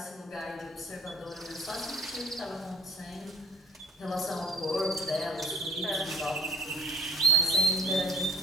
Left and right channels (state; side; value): normal; both; correlation 0.51